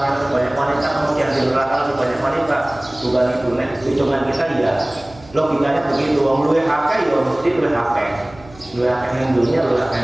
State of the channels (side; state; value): right; noise; hum, 23 dB below the sound